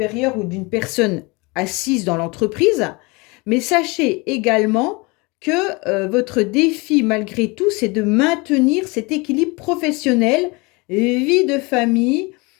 ou d'une personne assise dans l'entreprise, mais sachez également que votre défi, malgré tout, c'est de maintenir cet équilibre professionnel, vie de famille,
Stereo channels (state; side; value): quieter; right; 26.7 dB